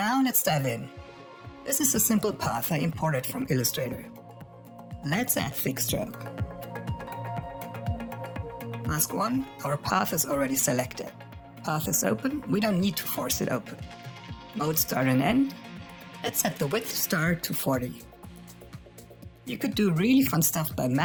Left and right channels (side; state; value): both; identical; correlation 1.00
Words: let's dive in. This is a simple path I imported from Illustrator. Let's add Thicc Stroke. Mask 1, our path is already selected. Path is open, we don't need to force it open. Mode start and end. Let's set the width start to 40. You could do really fun stuff by